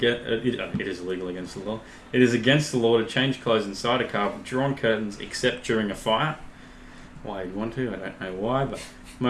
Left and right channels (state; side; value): identical; both; correlation 1.00